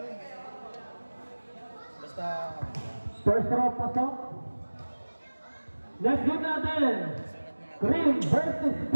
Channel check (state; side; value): inverted; both; correlation -1.00